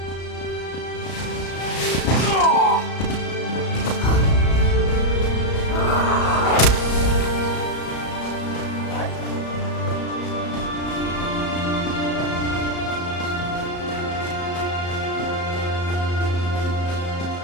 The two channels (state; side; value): late; right; 34 ms